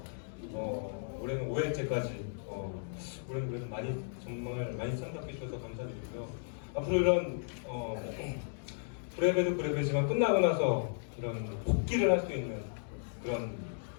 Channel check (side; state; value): right; silent; digital silence